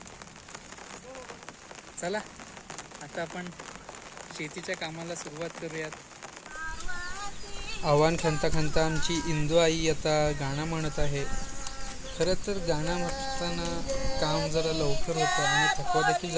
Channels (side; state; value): both; identical; correlation 1.00